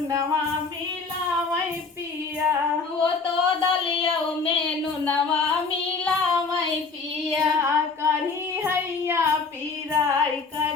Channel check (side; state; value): right; quieter; 4.5 dB